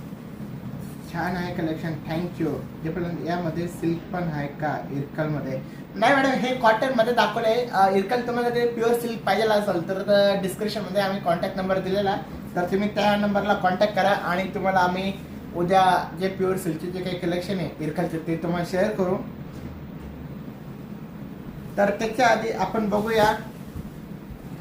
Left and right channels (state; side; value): identical; both; correlation 1.00